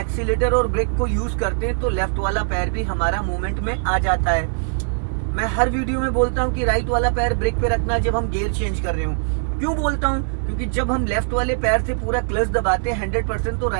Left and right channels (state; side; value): silent; left; digital silence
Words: और ब्रेक को यूज करते हैं तो लेफ्ट वाला पैर भी हमारा मूवमेंट में आ जाता है। मैं हर वीडियो में बोलता हूं कि राइट वाला पैर ब्रेक पे रखना जब हम गियर चेंज कर रहे हो। क्यों बोलता हूं? क्योंकि जब हम लेफ्ट वाले पैर से पूरा क्लच दबाते हैं 100%, तो